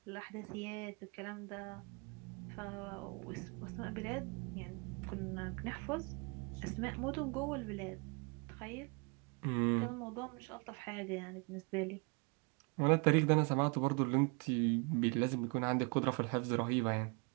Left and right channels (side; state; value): left; quieter; 32.7 dB